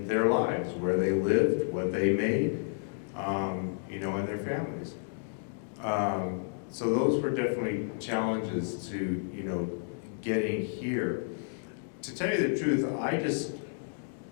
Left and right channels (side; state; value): right; silent; digital silence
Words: their lives, where they lived, what they made, and their families. So those were definitely challenges to, getting here. To tell you the truth, I just